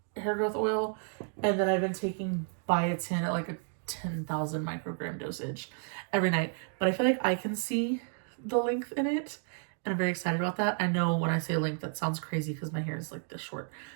hair growth oil. And then I've been taking biotin at like a 10,000 microgram dosage every night. But I feel like I can see the length in it. And I'm very excited about that. I know when I say length, that sounds crazy because my hair is like this short.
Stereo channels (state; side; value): silent; left; 57 dB below the other